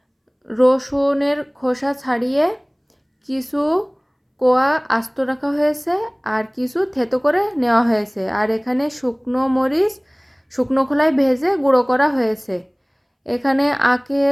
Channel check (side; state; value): both; identical; correlation 1.00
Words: রসুনের খোসা ছাড়িয়ে কিছু কোয়া আস্ত রাখা হয়েছে আর কিছু থেতো করে নেওয়া হয়েছে। আর এখানে শুকনো মরিচ শুকনো খোলায় ভেজে গুঁড়ো করা হয়েছে। এখানে